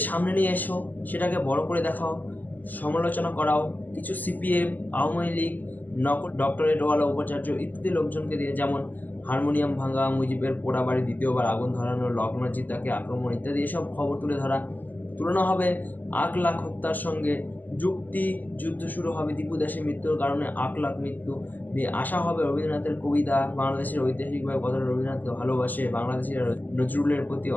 সামনে নিয়ে এসো, সেটাকে বড় করে দেখাও, সমালোচনা করাও। কিছু সিপিএম, আওয়ামী লীগ, ডক্টরেটওয়ালা উপাচার্য ইত্যাদি লোকজনকে দিয়ে, যেমন হারমোনিয়াম ভাঙা, মুজিবের পোড়া বাড়ি দ্বিতীয়বার আগুন ধরানো, লগ্নজিৎ তাকে আক্রমণ ইত্যাদি এসব খবর তুলনা হবে 8 লাখ হত্যার সঙ্গে। যুদ্ধ শুরু হবে দীপু দাসের মৃত্যুর কারণে 8 লাখ মৃত্যু নিয়ে। আসা হবে রবীন্দ্রনাথের কবিতা, বাংলাদেশের ঐতিহাসিকভাবে কতটা রবীন্দ্রনাথকে ভালোবাসে, বাংলাদেশিরা নজরুলের প্রতি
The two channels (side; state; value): right; late; 0.084 ms